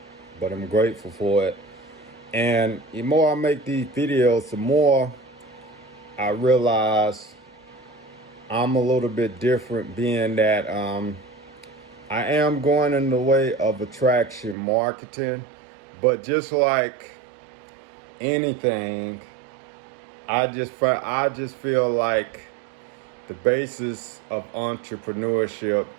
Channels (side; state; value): left; drops out; at 14.6 s